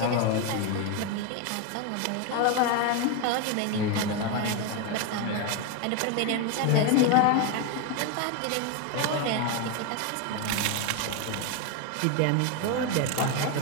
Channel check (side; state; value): both; different; correlation 0.02